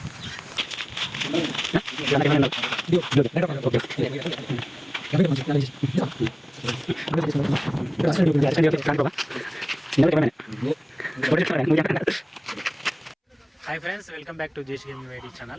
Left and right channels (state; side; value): identical; both; correlation 1.00